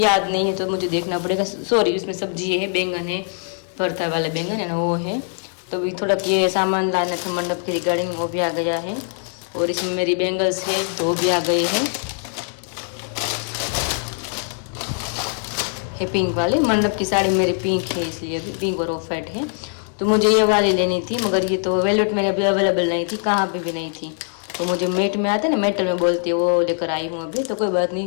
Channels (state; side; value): silent; right; 60 dB below the other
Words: याद नहीं है, तो मुझे देखना पड़ेगा। सॉरी, इसमें सब्जी है, बैंगन है, भरता वाले बैंगन है ना वो है। तो अभी थोड़ा ये सामान लाना था मंडप के रिगार्डिंग, वो भी आ गया है। और इसमें मेरी बैंगल्स है तो भी आ गई है पिंक वाली। मंडप की साड़ी मेरी पिंक है, इसलिए अभी पिंक और ऑफ वाइट है। तो मुझे ये वाली लेनी थी, मगर ये तो वेलवेट में अभी अवेलेबल नहीं थी, कहाँ पे भी नहीं थी। तो मुझे मेट में आता है ना, मेटल में बोलती है, वो लेकर आई हूँ अभी। तो कोई बात नहीं,